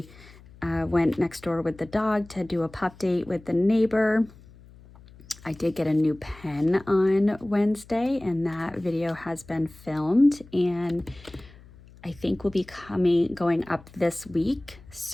went next door with the dog to do a pup date with the neighbor. I did get a new pen on Wednesday, and that video has been filmed and I think will be going up this week.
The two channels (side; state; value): left; noise; hum, 22 dB below the sound